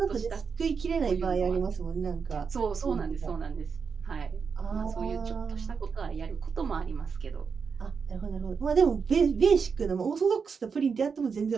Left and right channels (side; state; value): left; quieter; 5.7 dB